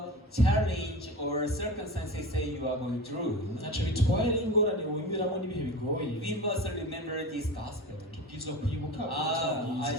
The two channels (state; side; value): normal; both; correlation 0.31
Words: challenge or circumstances say you are going through, ntacyo bitwaye n'ingorane wimiramo n'ibihe bigoye. we must remember this gospel. tubwirizwa kwibuka ubutumwa I